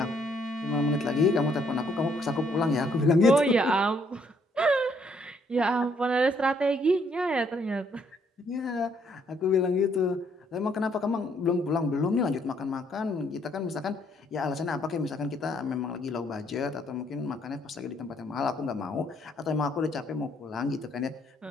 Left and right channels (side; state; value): both; normal; correlation 0.68